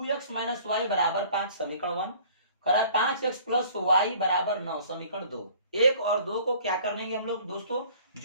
माइनस वाई बराबर 5, समीकरण 1। करा 5x प्लस वाई बराबर 9, समीकरण 2। 1 और 2 को क्या करेंगे हम लोग दोस्तों?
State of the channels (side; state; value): both; inverted; correlation -0.52